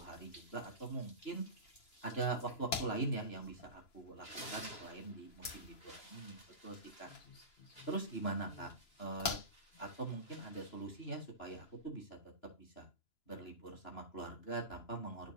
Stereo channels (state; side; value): late; right; 2.9 ms